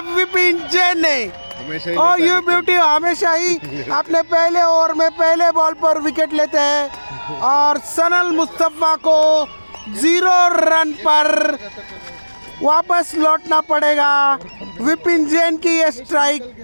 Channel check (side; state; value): both; inverted; correlation -1.00